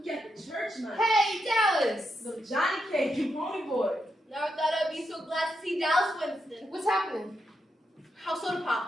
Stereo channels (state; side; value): normal; both; correlation 0.84